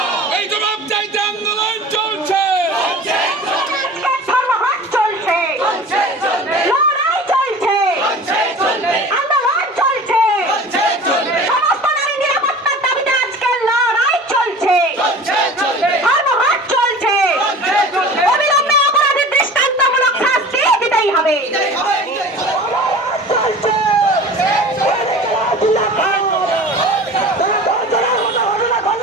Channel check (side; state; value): both; normal; correlation 0.39